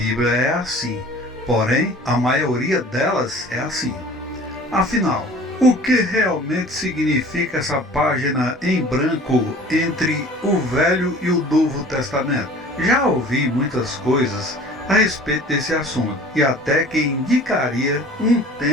é assim, porém a maioria delas é assim. Afinal, o que realmente significa essa página em branco entre o Velho e o Novo Testamento? Já ouvi muitas coisas a respeito desse assunto, e até que indicaria um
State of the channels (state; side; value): normal; both; correlation 0.46